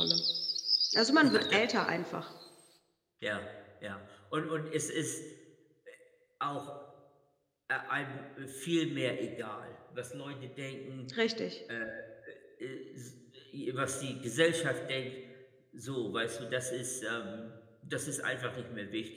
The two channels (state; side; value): identical; both; correlation 1.00